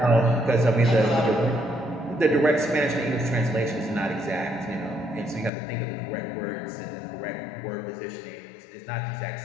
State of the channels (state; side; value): drops out; right; at 5.5 s